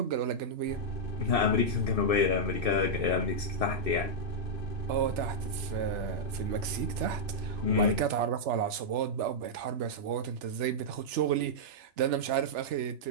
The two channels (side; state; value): left; late; 3.4 ms